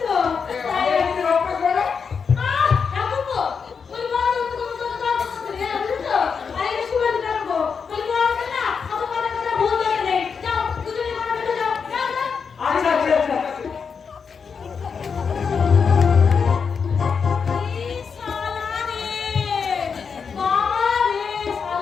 তো। তাই কি অভ্যাস হলো? ঠাকুরপো, ওই বড় তো করে বুঝছো? আরে এটা শুভেন্দু ঠাকুরপো। ওই বড় না, অত কথা কথা ভুল ধরে নেই। যাও, দুজনে ঘরে ঢুকে যাও। যাও, যাও। আচ্ছা আচ্ছা আচ্ছা। এই শালা রে, বাবা রে,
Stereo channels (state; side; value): quieter; right; 6.0 dB